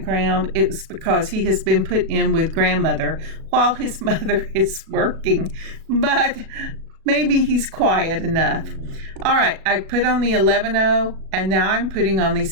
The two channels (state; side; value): late; left; 37 ms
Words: it's because he has been put in with grandmother while his mother is working, but maybe he's quiet enough. All right, I put on the 11-0, and now I'm putting on